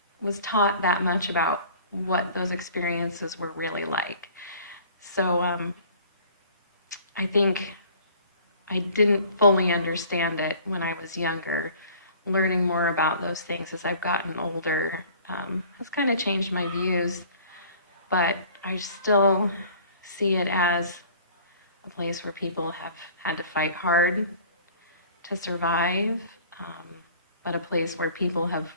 was taught that much about what those experiences were really like. So I think I didn't fully understand it when I was younger. Learning more about those things as I've gotten older has kind of changed my views, but I still see it as a place where people have had to fight hard to survive, um, but a place where people have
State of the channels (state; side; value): inverted; both; correlation -0.49